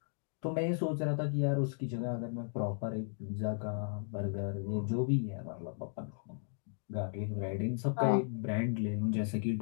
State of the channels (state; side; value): silent; right; digital silence